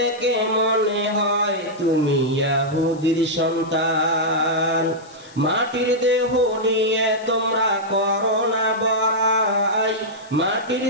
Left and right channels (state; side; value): noise; left; hiss, 25 dB below the sound